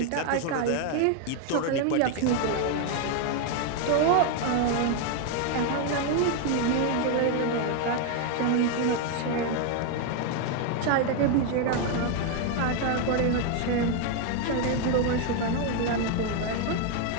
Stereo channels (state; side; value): different; both; correlation 0.01